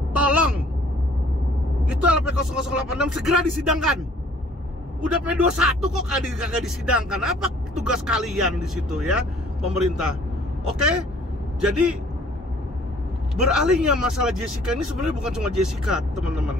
tolong itu LP 0086 segera disidangkan. Udah P21 kok kagak disidangkan. Apa tugas kalian di situ, ya, pemerintah? Oke? Jadi beralihnya masalah Jessica ini sebenarnya bukan cuma Jessica, teman-teman,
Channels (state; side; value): normal; both; correlation 0.56